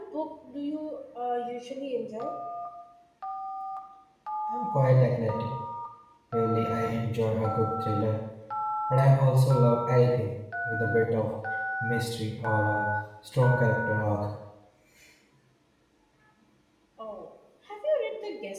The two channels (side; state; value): both; identical; correlation 1.00